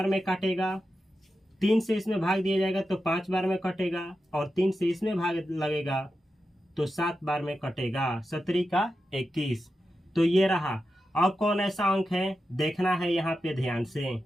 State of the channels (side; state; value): both; normal; correlation 0.90